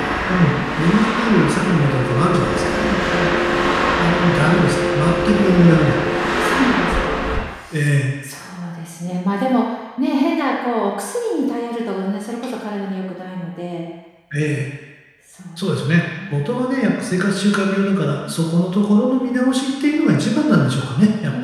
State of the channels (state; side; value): identical; both; correlation 1.00